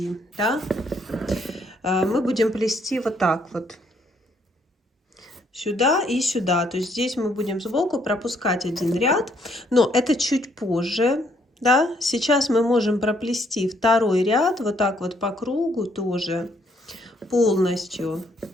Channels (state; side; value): normal; both; correlation 0.69